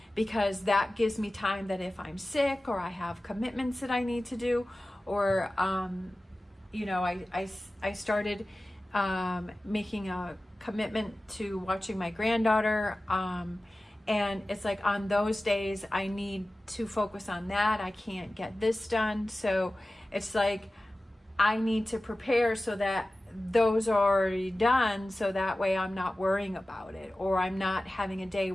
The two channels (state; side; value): normal; both; correlation 0.96